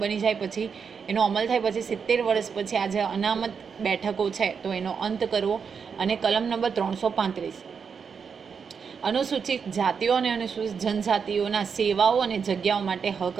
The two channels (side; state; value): left; quieter; 6.2 dB